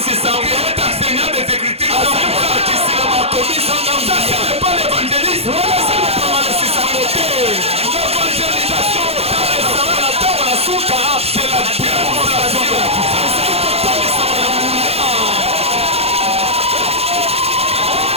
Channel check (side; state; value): left; late; 0.29 ms